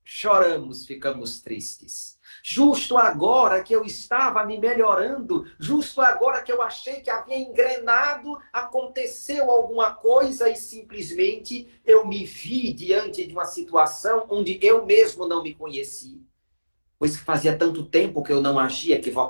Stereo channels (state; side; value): inverted; both; correlation -1.00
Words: Choramos, ficamos tristes. Justo agora que eu estava me melhorando, justo agora que eu achei que havia engrenado, aconteceu alguma coisa e simplesmente eu me vi diante de uma situação onde eu mesmo não me conheci. Pois fazia tanto tempo que eu não agia